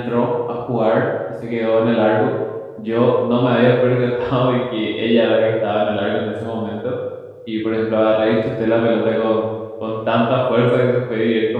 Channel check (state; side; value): identical; both; correlation 1.00